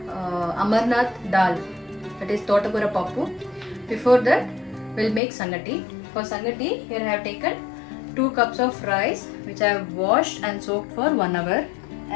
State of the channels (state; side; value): drops out; right; at 5.2 s